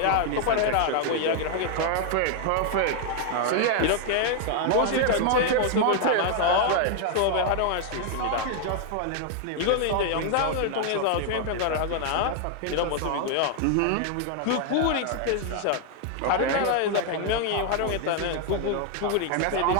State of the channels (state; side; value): different; both; correlation 0.00